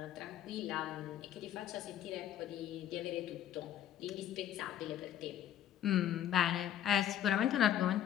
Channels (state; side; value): quieter; right; 10.8 dB